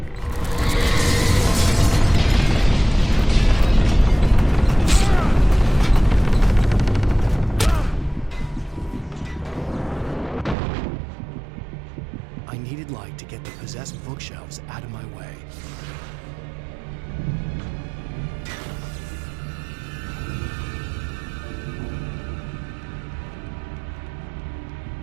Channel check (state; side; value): drops out; left; at 10.6 s